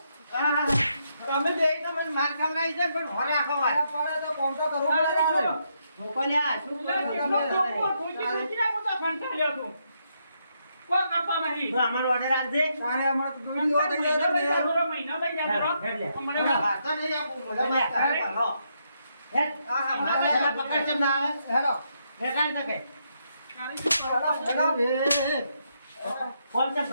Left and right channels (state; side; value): inverted; both; correlation -0.78